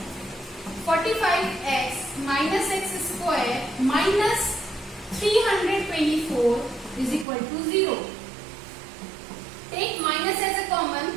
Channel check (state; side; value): drops out; left; at 7.2 s